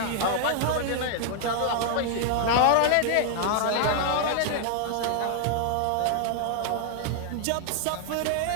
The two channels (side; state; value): both; different; correlation 0.00